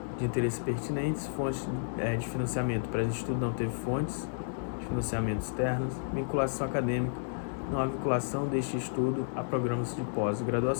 de interesse pertinentes. Fontes de financiamento. Para esse estudo não teve fontes de financiamento externas. Vinculação acadêmica. Não há vinculação deste estudo a programas de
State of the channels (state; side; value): silent; right; digital silence